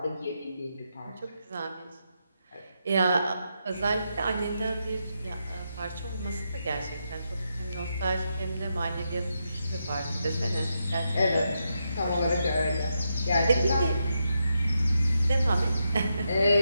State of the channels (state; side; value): inverted; both; correlation -0.84